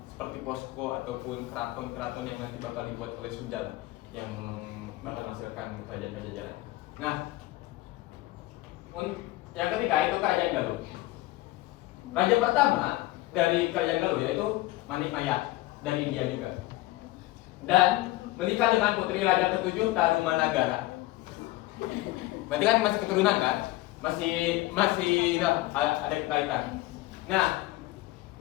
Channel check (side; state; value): right; quieter; 18.1 dB